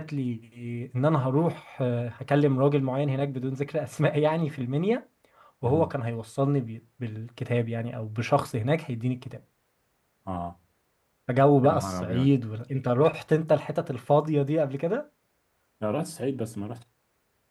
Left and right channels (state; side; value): identical; both; correlation 1.00